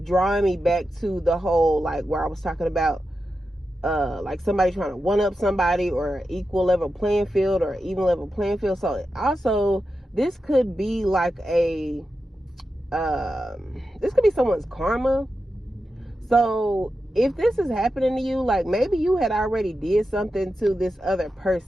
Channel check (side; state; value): both; normal; correlation 0.90